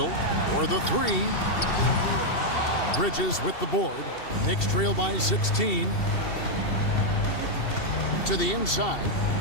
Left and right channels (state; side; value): late; right; 2.7 ms